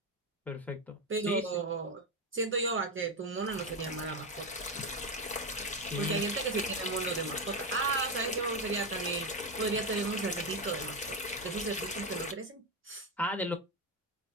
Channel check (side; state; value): both; normal; correlation 0.11